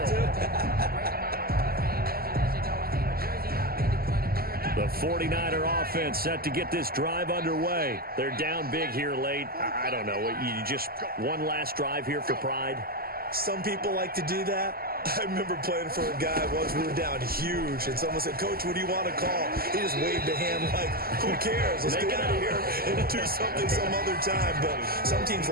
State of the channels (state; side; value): late; left; 0.44 ms